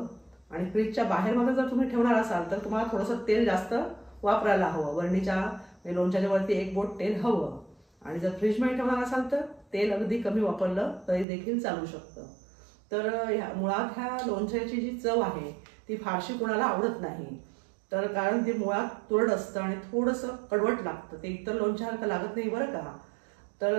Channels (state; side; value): drops out; left; at 11.2 s